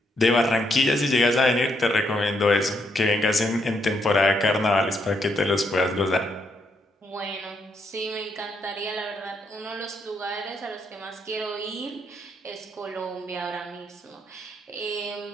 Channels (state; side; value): normal; both; correlation 0.76